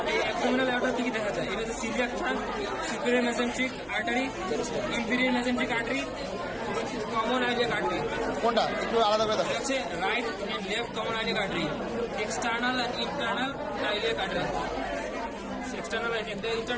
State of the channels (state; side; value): identical; both; correlation 1.00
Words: এই অ্যাবডোমিনাল অ্যাওটা কি কি দেখা যায়? এটা হচ্ছে coeliac trunk, superior mesenteric artery, inferior mesenteric artery, common iliac artery. কোনটা একটু আলাদা করে দেখো। এটা হচ্ছে right and left common iliac artery, external and internal iliac artery. External